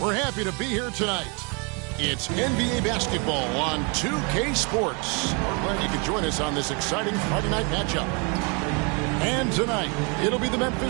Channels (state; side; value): quieter; left; 33.1 dB